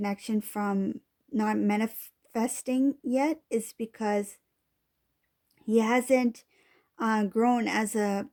from not manifesting yet, is because he hasn't grown as a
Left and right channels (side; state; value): both; identical; correlation 1.00